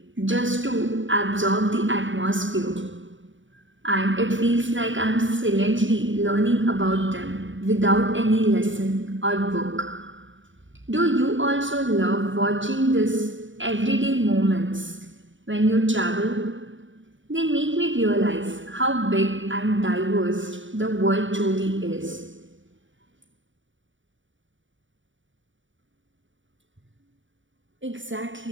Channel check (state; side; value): late; left; 0.56 ms